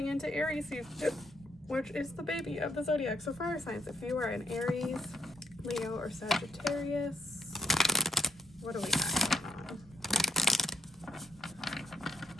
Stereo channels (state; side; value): normal; both; correlation 0.73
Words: into Aries season, which is the baby of the zodiac. So fire signs, if you are an Aries, Leo, or Sagittarius, what do we got going on?